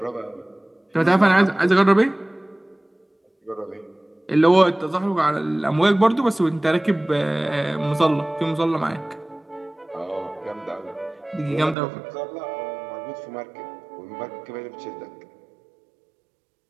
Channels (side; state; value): left; drops out; at 11.8 s